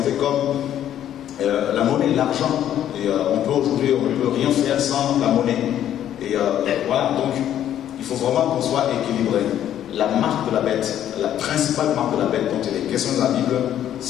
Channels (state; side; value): quieter; right; 11.0 dB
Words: comme la monnaie, l'argent. Et on peut rien faire sans la monnaie. Et voilà, donc il faut vraiment qu'on soit équilibré. La marque de la bête, la principale marque de la bête dont il est question de la Bible,